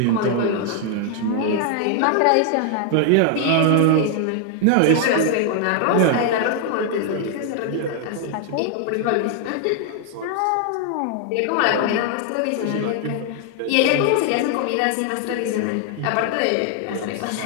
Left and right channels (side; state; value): both; different; correlation 0.00